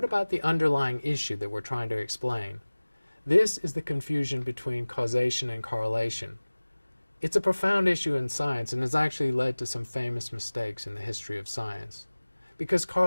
about the underlying issue that we're trying to explain? This is the confusion between causation and correlation. It's a profound issue in science and has actually led to some famous mistakes in the history of science. Because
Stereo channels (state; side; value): inverted; both; correlation -1.00